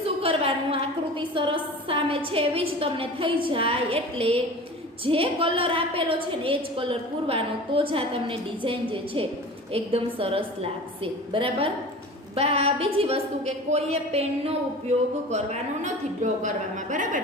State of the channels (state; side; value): normal; both; correlation 0.37